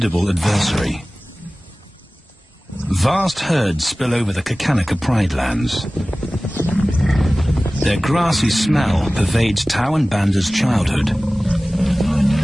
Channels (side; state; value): both; normal; correlation 0.98